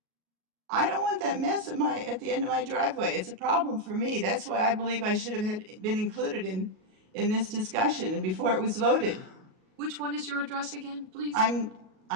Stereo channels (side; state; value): left; late; 38 ms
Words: I don't want that mess at the end of my driveway. It's a problem for me. That's why I believe I should have been included in this discussion and before it was voted. Which one is your address again, please?